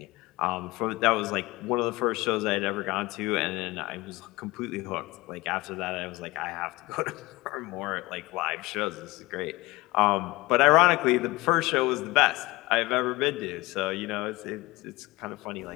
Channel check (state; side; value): quieter; right; 21.3 dB